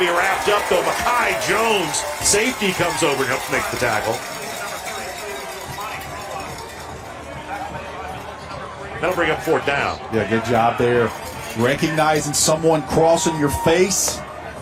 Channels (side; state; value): both; identical; correlation 1.00